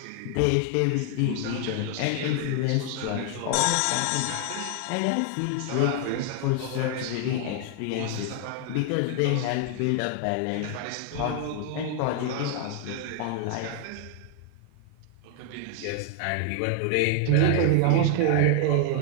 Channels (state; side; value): different; both; correlation 0.00